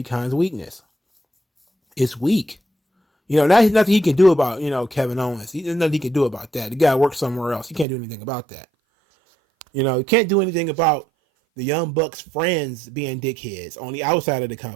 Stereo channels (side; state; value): left; drops out; at 7.9 s